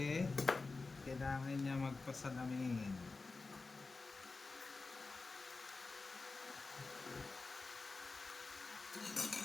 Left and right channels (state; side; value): quieter; right; 3.9 dB